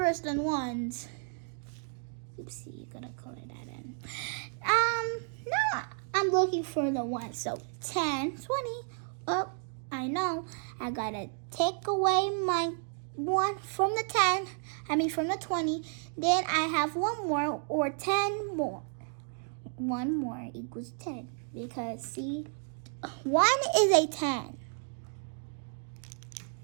than 1s. Oopsie, you're gonna color that in. Now I'm looking for the 1. So 10, 20. Oh, I know. I gotta take away my 1 from the 10. From the 20. Then I have 1 more, or 10 more. 1 more equals 10. Because see, 1 is a 10.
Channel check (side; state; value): left; silent; 56 dB below the other